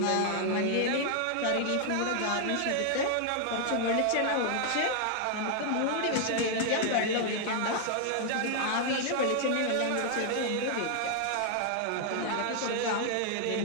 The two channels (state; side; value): different; both; correlation 0.00